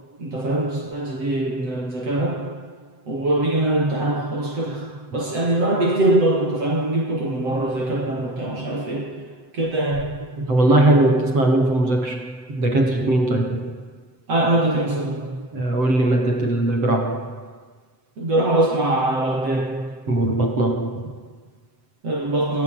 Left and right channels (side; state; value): left; late; 7.8 ms